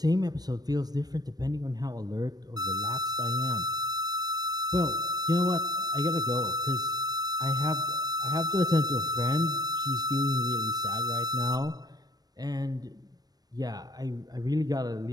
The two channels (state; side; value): late; left; 0.19 ms